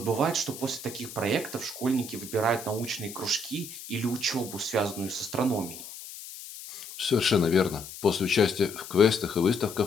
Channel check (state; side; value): noise; left; hiss, 13 dB below the sound